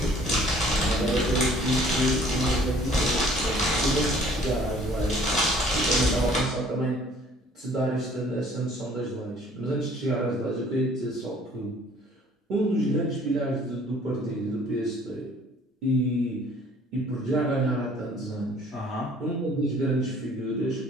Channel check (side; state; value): both; normal; correlation 0.55